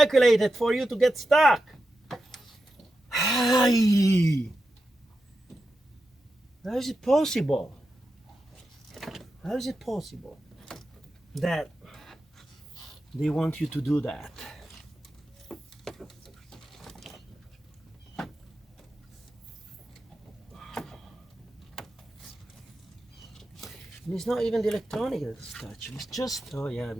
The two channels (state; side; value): normal; both; correlation 0.90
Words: for you to get stuck. Hi. How is it possible? How is it possible that they want you to do that? And it's not even the electronic that's touching. It's just, oh yeah,